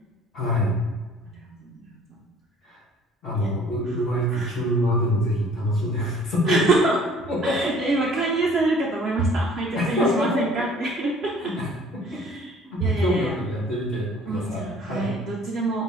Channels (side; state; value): both; normal; correlation 0.53